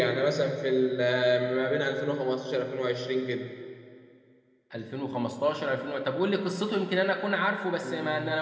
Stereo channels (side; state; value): both; identical; correlation 1.00